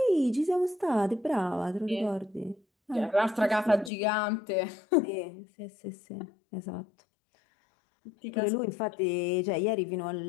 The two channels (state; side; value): drops out; right; at 3.9 s